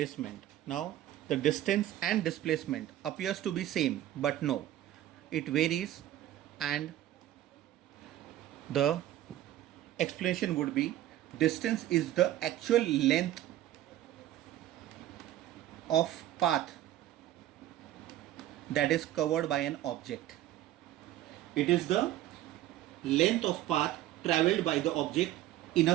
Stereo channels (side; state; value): left; quieter; 13.3 dB